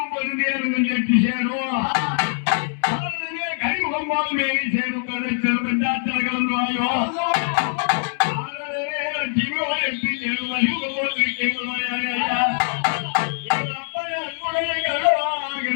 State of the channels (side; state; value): right; silent; 64 dB below the other